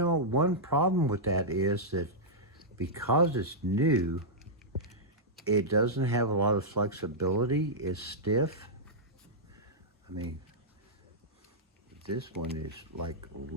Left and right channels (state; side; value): normal; both; correlation -0.10